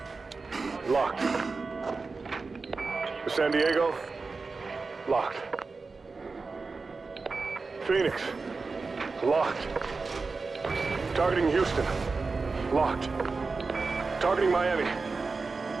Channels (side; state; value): left; quieter; 4.2 dB